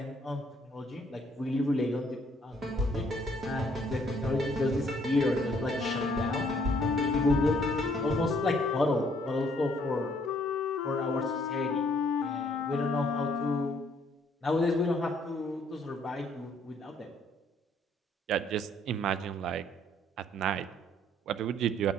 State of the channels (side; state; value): both; normal; correlation 0.65